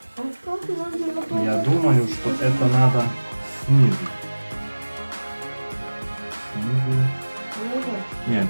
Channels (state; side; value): inverted; both; correlation -1.00